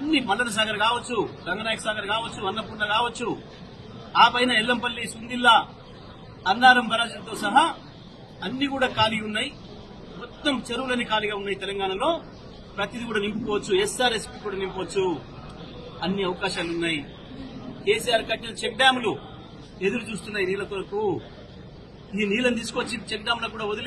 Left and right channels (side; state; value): both; identical; correlation 1.00